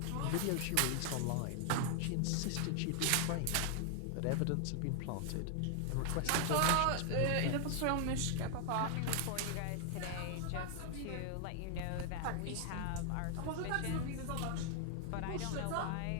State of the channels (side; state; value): both; different; correlation 0.00